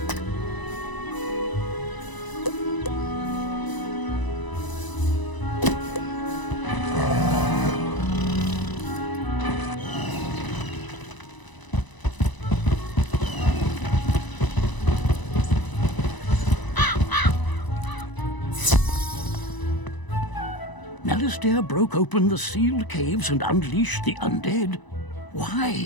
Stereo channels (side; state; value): right; late; 1.0 ms